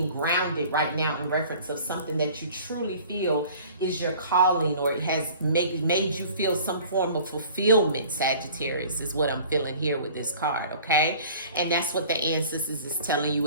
grounded right now in reference of something that you truly feel is your calling, or it has made you feel some form of fulfillment. Sagittarius is what I'm feeling here with this card, okay? And that's what the ancestors is telling you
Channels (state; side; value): inverted; both; correlation -0.48